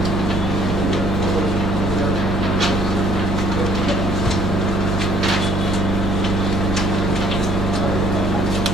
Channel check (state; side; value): normal; both; correlation 0.61